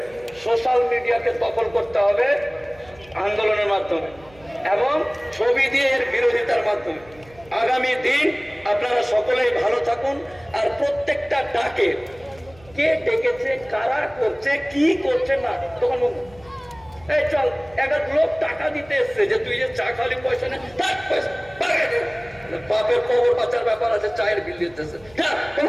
সোশ্যাল মিডিয়াকে দখল করতে হবে আন্দোলনের মাধ্যমে এবং ছবি দিয়ে এর বিরোধিতার মাধ্যমে। আগামী দিন আপনারা সকলেই ভালো থাকুন। আর প্রত্যেকটা ডাকে কে ডেকেছে, কারা করছে, কি করছে না, তখন এই চল এক লোক টাকা দিতে এসছে যে তুই যে চা খালি পয়সা নেই, বাপের কবর বাঁচার ব্যাপার আছে, চায়ের বিল দিতেছে। হ্যাঁ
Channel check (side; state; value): right; noise; hum, 25 dB below the sound